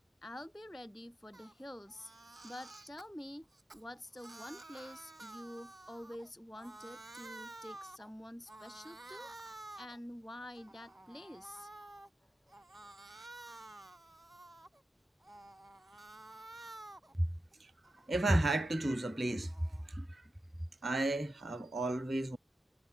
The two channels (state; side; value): normal; both; correlation 0.91